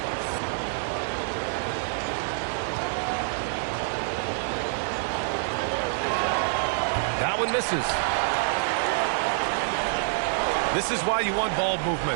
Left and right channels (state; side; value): silent; left; 60 dB below the other